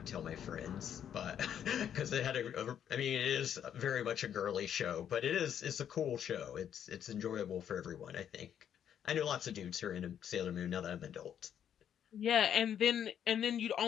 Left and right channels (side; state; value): right; quieter; 9.3 dB